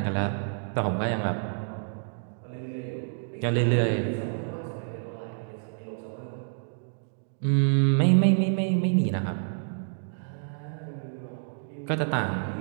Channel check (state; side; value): silent; left; digital silence